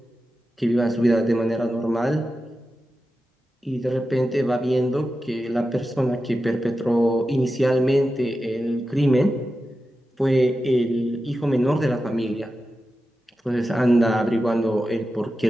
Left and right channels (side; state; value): both; normal; correlation 0.92